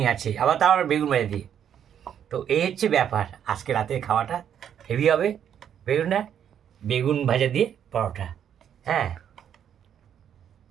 আছে, আবার তাও আবার বেগুন ভাজা দিয়ে। তো এই হচ্ছে ব্যাপার, আজকে রাতের খাওয়াটা হেভি হবে। বেগুনটা, বেগুন ভাজা দিয়ে পরোটা। হ্যাঁ,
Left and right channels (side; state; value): left; quieter; 9.1 dB